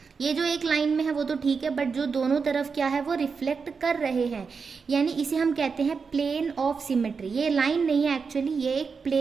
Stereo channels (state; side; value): quieter; left; 5.3 dB